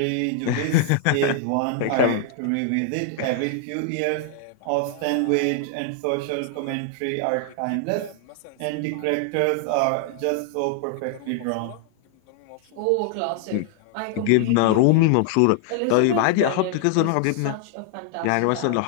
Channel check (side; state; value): both; different; correlation 0.00